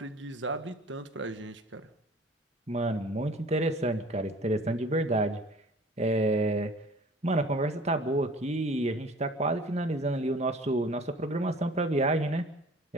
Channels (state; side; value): normal; both; correlation 0.47